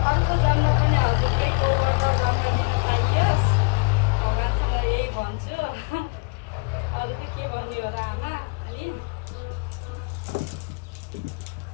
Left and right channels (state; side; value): quieter; right; 29.8 dB